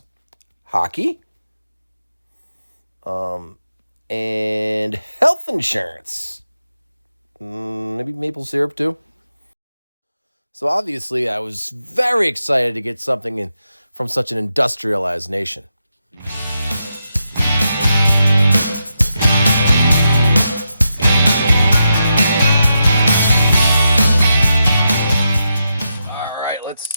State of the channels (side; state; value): both; inverted; correlation -0.86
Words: Hockey. And health insurance. Maybe maple syrup too. So obviously I was very excited to get something from such an industrialized nation. All right, let's